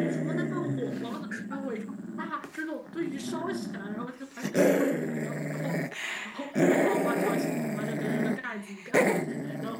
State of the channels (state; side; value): identical; both; correlation 1.00